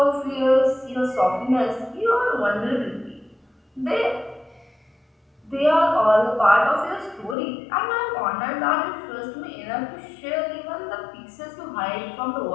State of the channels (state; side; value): drops out; right; at 7.4 s